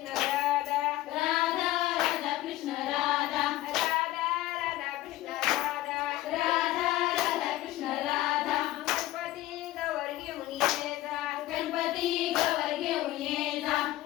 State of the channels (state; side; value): quieter; right; 16.1 dB